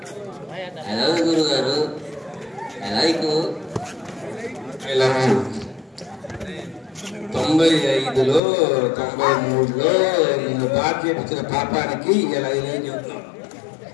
హలో గురుగారు లైక్ 95లో 93లో నిన్ను పాట చేపించిన పాపానికి ఇలా ఇలా చెబుతున్నాం.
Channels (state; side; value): drops out; right; at 8.4 s